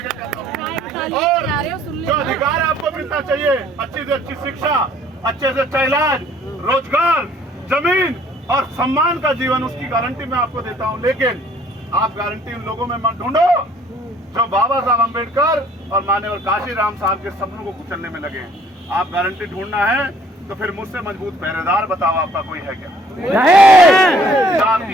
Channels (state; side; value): normal; both; correlation 0.59